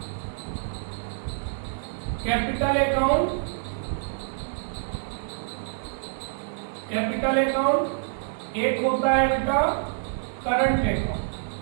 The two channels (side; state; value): left; silent; digital silence